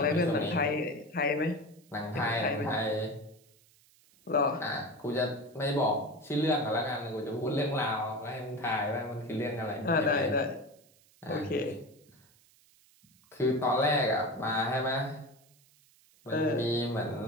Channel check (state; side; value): noise; right; hiss, 30 dB below the sound